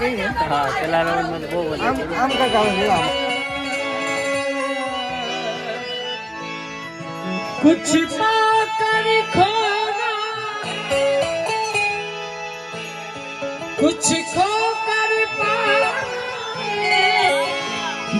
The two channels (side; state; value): both; identical; correlation 1.00